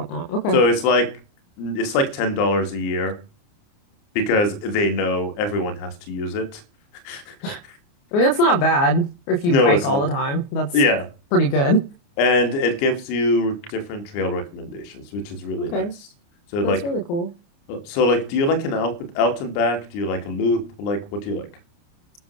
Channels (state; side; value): late; right; 29 ms